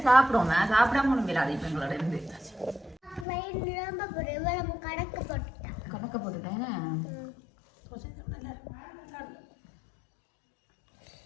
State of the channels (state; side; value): drops out; right; at 3.2 s